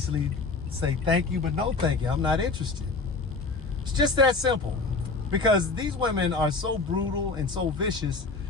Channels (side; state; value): right; quieter; 3.9 dB